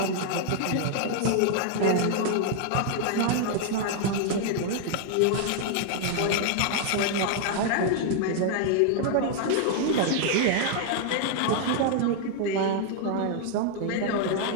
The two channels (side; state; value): both; different; correlation 0.00